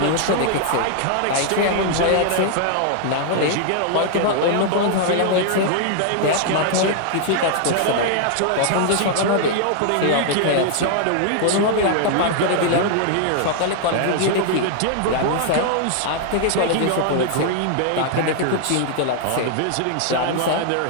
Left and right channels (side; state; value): both; different; correlation 0.00